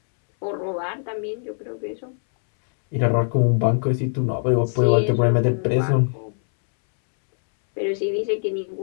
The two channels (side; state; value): right; silent; 64 dB below the other